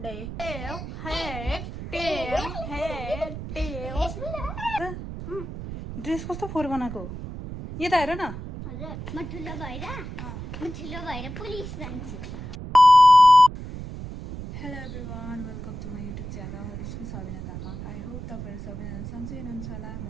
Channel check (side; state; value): right; noise; rumble, 9 dB below the sound